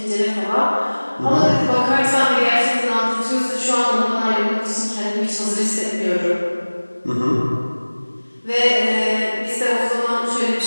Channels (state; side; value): inverted; both; correlation -1.00